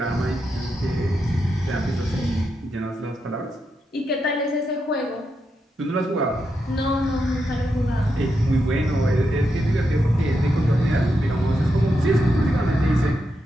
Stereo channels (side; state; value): both; normal; correlation 0.84